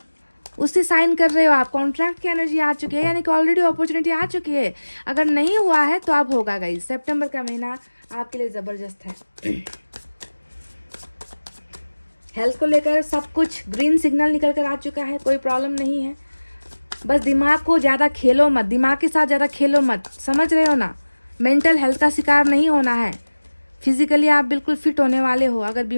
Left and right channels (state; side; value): inverted; both; correlation -1.00